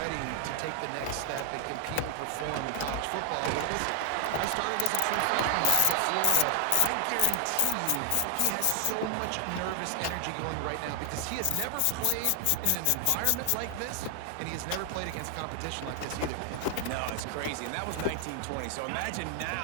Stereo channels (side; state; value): both; different; correlation 0.00